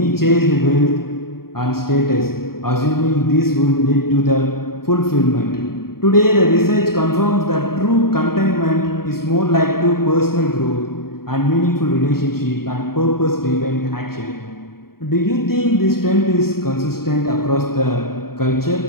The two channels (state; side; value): late; right; 0.93 ms